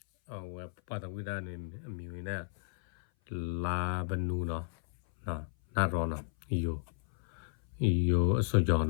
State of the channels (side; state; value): right; silent; 56 dB below the other